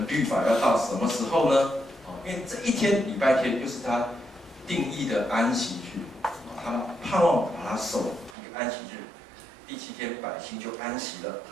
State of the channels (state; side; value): drops out; left; at 8.3 s